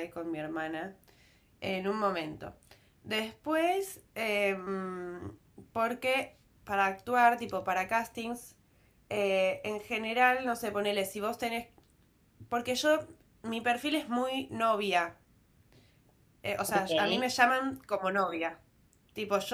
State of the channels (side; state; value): both; identical; correlation 1.00